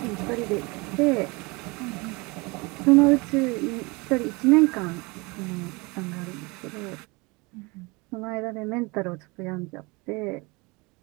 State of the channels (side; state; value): left; quieter; 26.2 dB